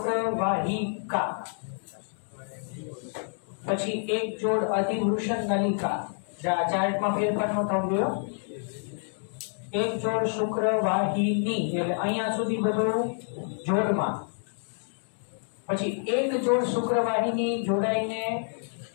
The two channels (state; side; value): silent; right; digital silence